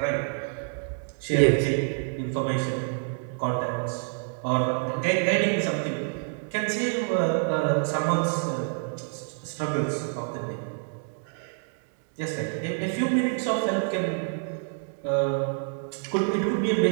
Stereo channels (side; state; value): left; silent; 60 dB below the other